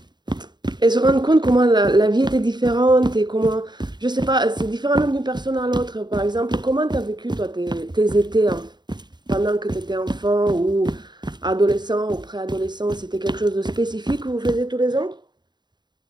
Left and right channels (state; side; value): late; left; 0.21 ms